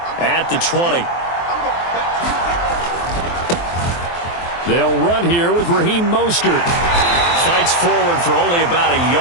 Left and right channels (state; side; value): late; right; 23 ms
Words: at the 20. They'll run here with Raheem Mostert. Fights forward for only about a